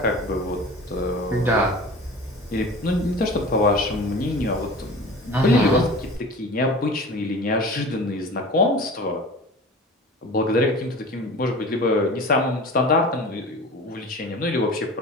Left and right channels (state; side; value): normal; both; correlation 0.38